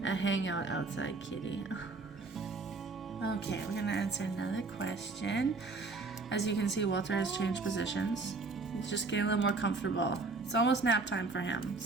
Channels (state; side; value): quieter; left; 3.8 dB